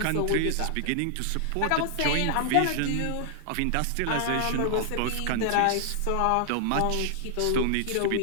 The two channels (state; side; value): different; both; correlation -0.01